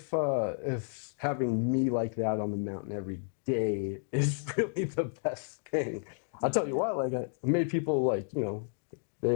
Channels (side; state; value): right; silent; digital silence